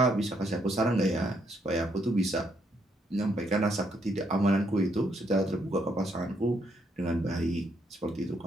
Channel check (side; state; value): both; normal; correlation 0.74